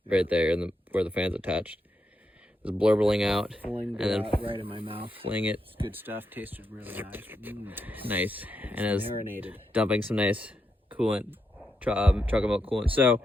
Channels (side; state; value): both; normal; correlation 0.83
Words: right there, where the fan's attached. It was blurbling out, Pulling and then right in my mouth. fling it. It's good stuff. Tasted really nice. Nice, and it was Marinated. dumping some nice coolant, chocolate milk coolant. So